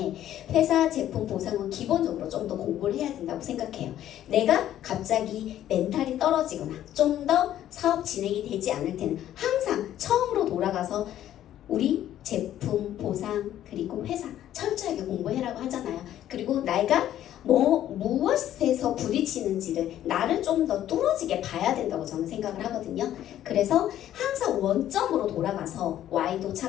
회사 제품 보상은 기본적으로 좀 더 공부를 해야 된다고 생각해요. 내가 갑자기 멘탈이 떨어지거나 좀 더 사업 진행이 되지 않을 때는 항상 처음으로 돌아가서 우리 제품 보상 그리고 회사 철저하게 공부해라고 하잖아요. 그리고 내가 무엇에서 부딪히는지를 나를 좀 더 뚫어지게 봐야 된다고 저는 생각을 하거든요. 그래서 항상 원점으로 돌아가서 Y도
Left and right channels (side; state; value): right; quieter; 11.9 dB